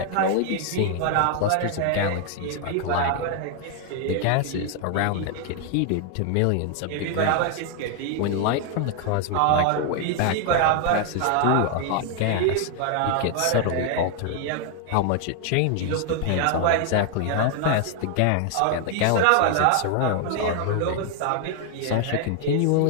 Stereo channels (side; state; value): both; different; correlation 0.00